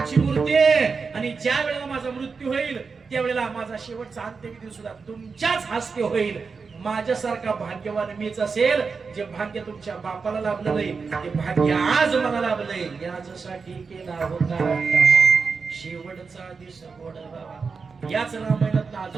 मूर्ती आहे. आणि ज्या वेळेला माझा मृत्यू होईल त्यावेळेला माझा शेवटचा अंत्यविधी सुद्धा तुमच्याच हस्ते होईल. माझ्यासारखा भाग्यवान मीच असेल. जे भाग्य तुमच्या बापाला लाभलं नाही ते भाग्य आज मला लाभलंय. यासाठी केला होता शेवटचा दिवस गोडा. याच रामायणात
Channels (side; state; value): left; quieter; 5.0 dB